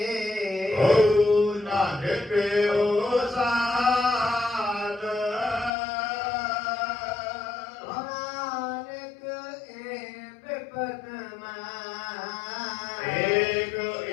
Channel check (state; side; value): drops out; right; at 5.7 s